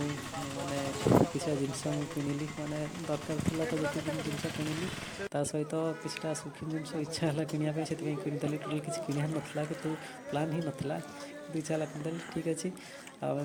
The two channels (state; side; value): identical; both; correlation 1.00